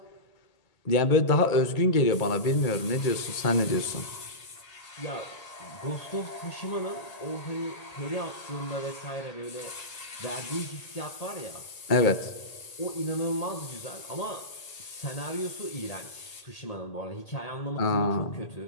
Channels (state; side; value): late; right; 1.8 ms